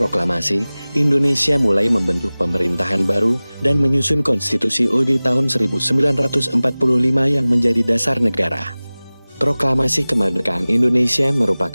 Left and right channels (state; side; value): inverted; both; correlation -0.99